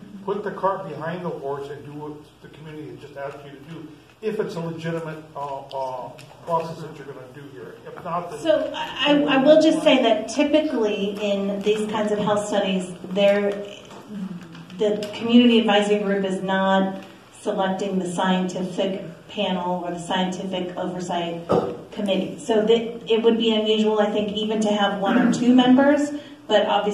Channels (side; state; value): both; identical; correlation 1.00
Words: Put the cart behind the horse and do what the community has just asked you to do, if it's a legitimate process that you're going to do here. If not, then... So I will just say that typically in these kinds of health studies, the community advisory group is not selecting the scientific panel or the scientific oversight committee. So it would be unusual, I think, even to have 1 or 2 members, but